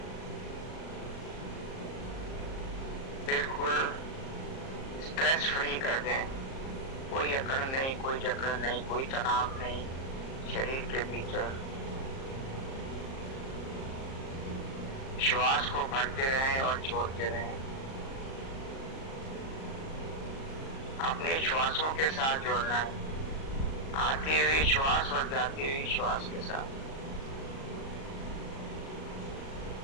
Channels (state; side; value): late; right; 38 ms